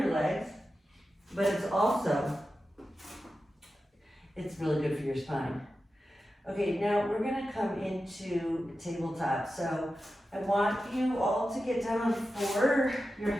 legs, but it's really good for your spine. Okay, now we're gonna come into tabletop. So I want you all to get down on four, your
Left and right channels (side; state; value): both; normal; correlation 0.92